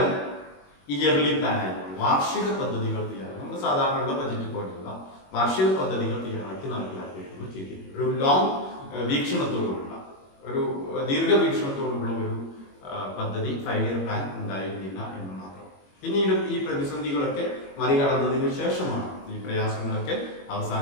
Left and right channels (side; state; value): right; late; 21 ms